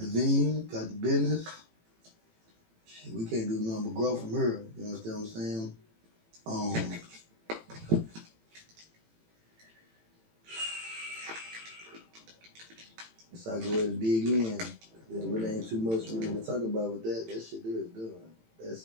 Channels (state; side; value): late; left; 18 ms